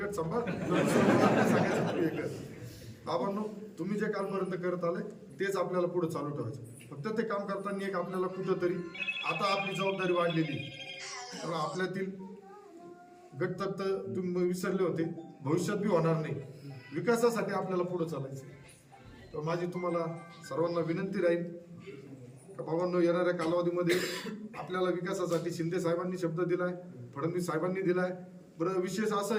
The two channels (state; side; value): identical; both; correlation 1.00